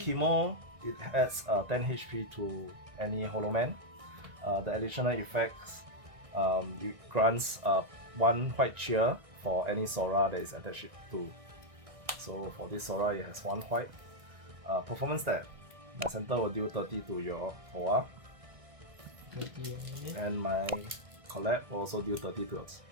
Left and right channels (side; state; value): left; late; 1.9 ms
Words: it adds 10 HP to any Holoman. The additional effects, it grants 1 white cheer for any Sora that is attached to. So for this Sora, it has 1 white. Performance stat, my center will deal 30 to your Towa. And my collect will also deal 30 to